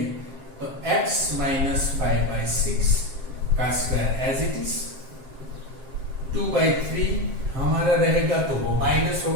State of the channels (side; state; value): left; late; 7.6 ms